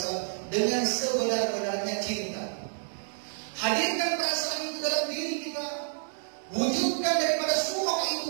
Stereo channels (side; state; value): left; silent; 58 dB below the other